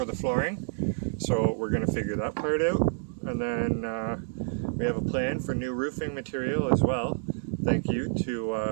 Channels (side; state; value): left; silent; digital silence